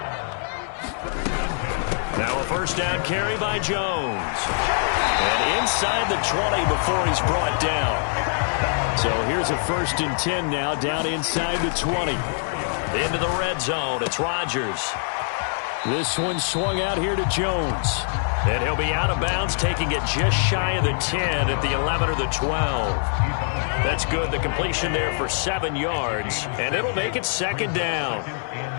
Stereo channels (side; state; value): right; silent; digital silence